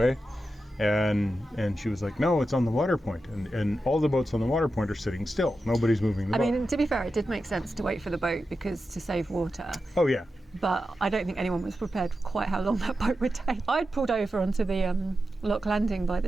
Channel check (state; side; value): normal; both; correlation 0.90